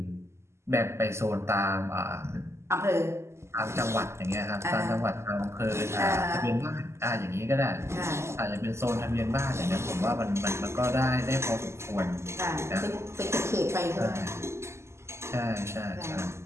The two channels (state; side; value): late; left; 0.13 ms